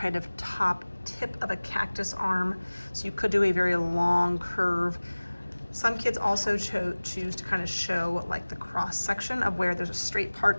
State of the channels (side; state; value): both; inverted; correlation -1.00